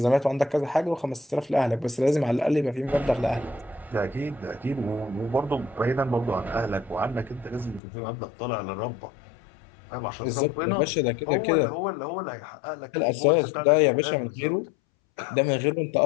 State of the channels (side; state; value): right; drops out; at 7.8 s